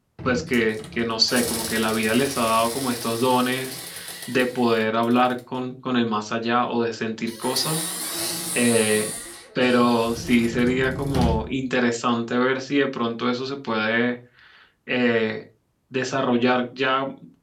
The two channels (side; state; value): both; identical; correlation 1.00